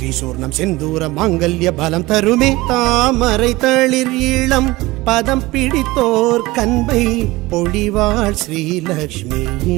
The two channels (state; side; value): quieter; left; 20.2 dB